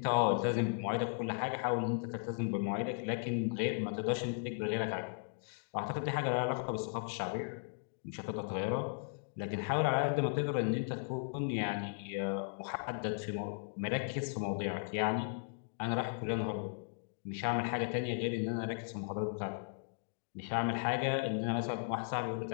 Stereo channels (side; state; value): right; silent; digital silence